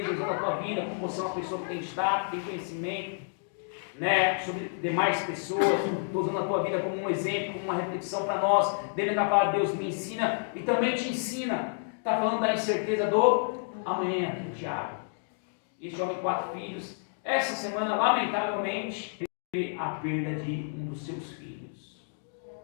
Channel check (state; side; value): silent; right; digital silence